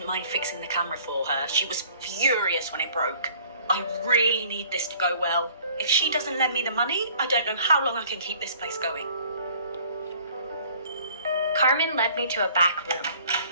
mind fixing the camera for her. She was furious when it broke. I really need this to go well. If she doesn't lend me the money, I don't know how long I can keep this place going. Carmen led me to a back room,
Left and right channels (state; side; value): inverted; both; correlation -0.55